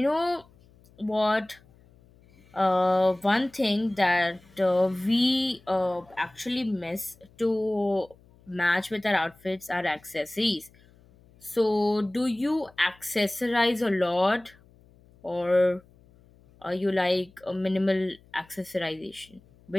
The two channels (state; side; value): noise; left; hum, 28 dB below the sound